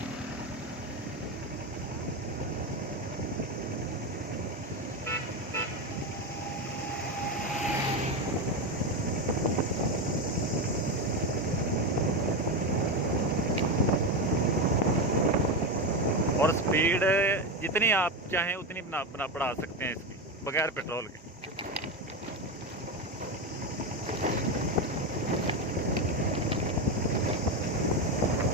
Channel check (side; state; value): both; normal; correlation 0.14